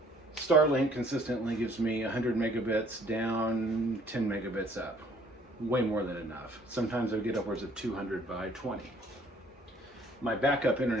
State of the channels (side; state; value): both; normal; correlation 0.59